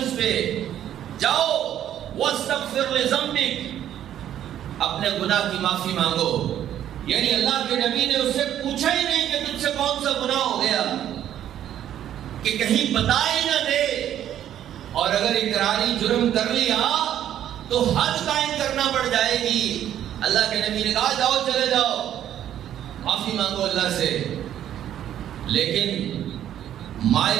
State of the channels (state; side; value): quieter; left; 11.0 dB